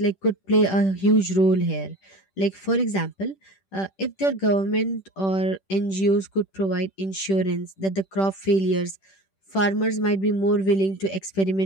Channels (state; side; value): late; right; 10 ms